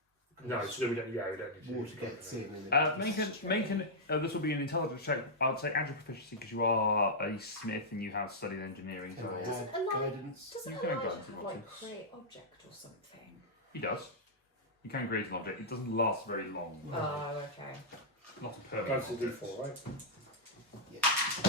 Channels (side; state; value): both; normal; correlation -0.09